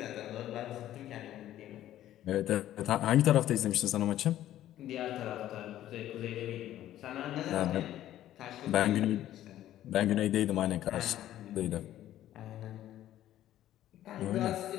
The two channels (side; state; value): right; quieter; 12.9 dB